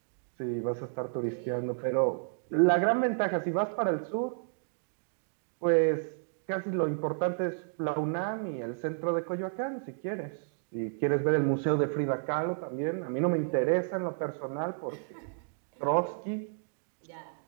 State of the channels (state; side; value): silent; left; digital silence